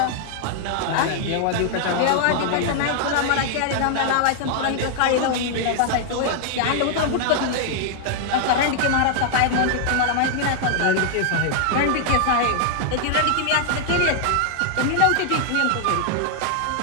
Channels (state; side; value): different; both; correlation -0.01